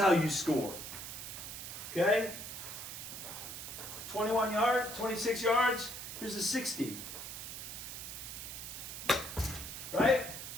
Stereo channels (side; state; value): right; noise; hiss, 8 dB below the sound